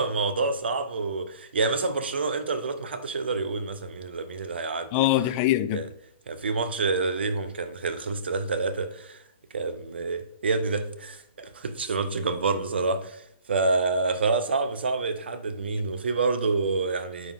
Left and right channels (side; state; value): both; inverted; correlation -0.51